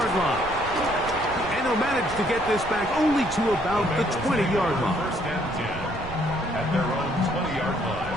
line. And he'll manage to get this back only to about the 20-yard line. First and 10 at their own 20-yard line.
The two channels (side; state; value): right; noise; rumble, 13 dB below the sound